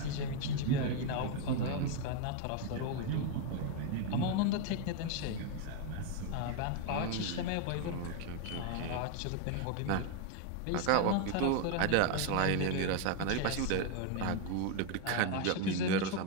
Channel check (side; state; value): both; different; correlation 0.01